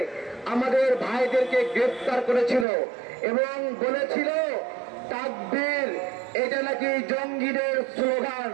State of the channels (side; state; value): left; drops out; at 2.7 s